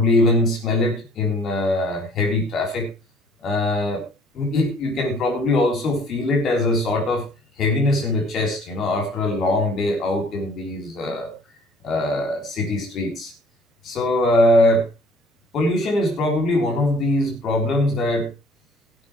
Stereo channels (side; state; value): both; normal; correlation 0.55